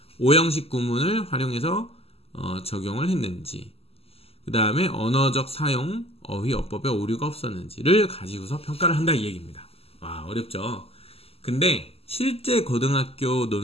5형식 구문을 활용해서 적용을 했는지, 그 다음에 언어적 사용, 어휘, 어법에 오류가 없었는지를 가지고서 평가를 한다 이 얘기입니다. 와, 어렵죠? 근데 실제 고등학교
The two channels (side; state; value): right; late; 0.29 ms